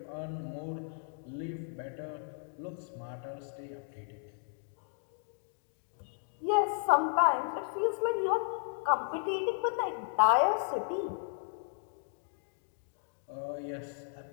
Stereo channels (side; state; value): right; silent; digital silence